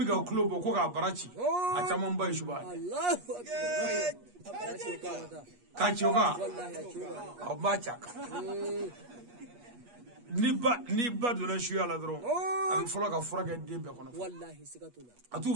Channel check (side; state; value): left; late; 8.3 ms